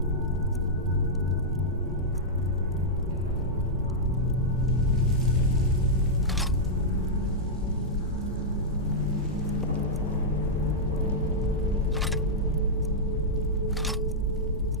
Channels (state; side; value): normal; both; correlation -0.08